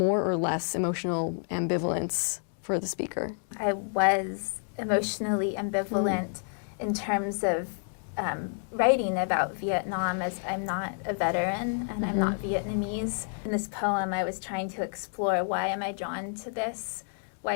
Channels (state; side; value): silent; right; digital silence